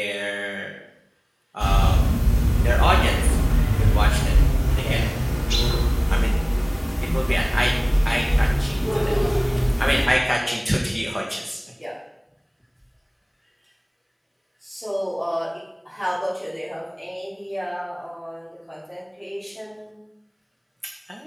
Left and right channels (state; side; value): identical; both; correlation 1.00